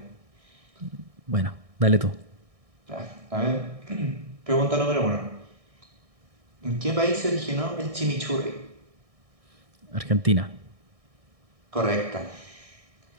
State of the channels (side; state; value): left; late; 1.6 ms